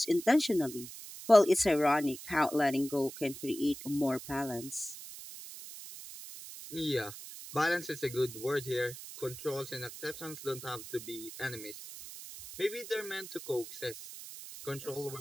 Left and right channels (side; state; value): right; noise; hiss, 12 dB below the sound